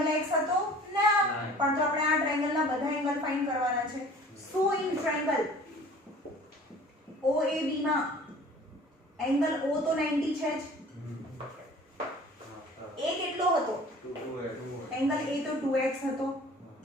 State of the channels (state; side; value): normal; both; correlation 0.47